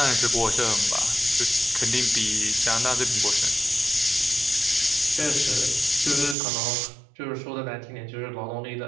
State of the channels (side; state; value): left; drops out; at 6.4 s